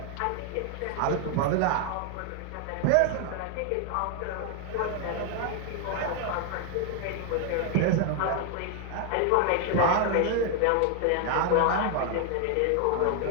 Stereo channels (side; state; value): both; different; correlation 0.00